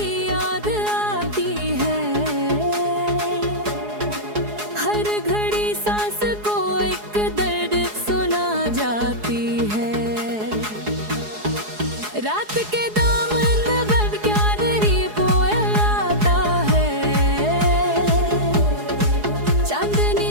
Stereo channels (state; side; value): late; left; 4.8 ms